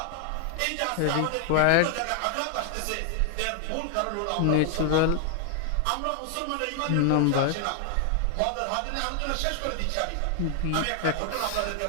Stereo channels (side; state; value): both; different; correlation 0.00